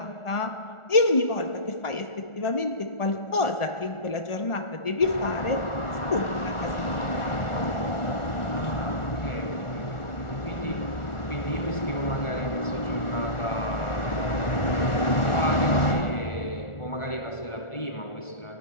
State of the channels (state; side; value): late; right; 1.4 ms